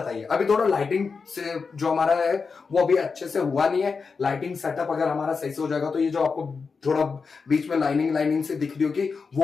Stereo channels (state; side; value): quieter; right; 5.0 dB